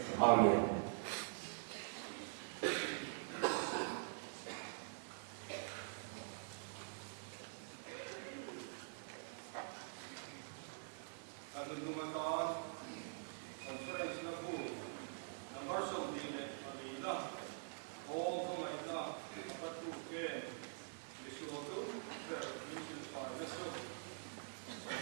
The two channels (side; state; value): left; silent; digital silence